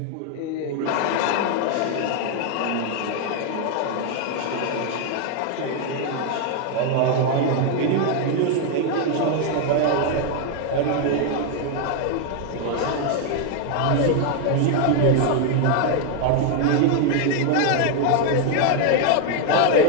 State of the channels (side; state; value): both; different; correlation 0.01